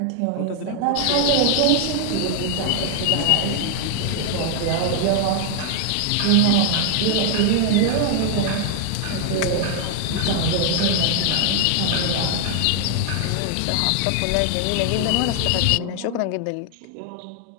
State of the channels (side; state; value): both; different; correlation 0.00